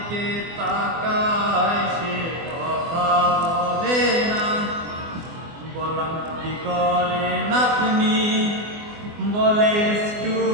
তাকায় সে কথা বলে না। বললাম কি করেন আপনি, বলে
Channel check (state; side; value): late; left; 24 ms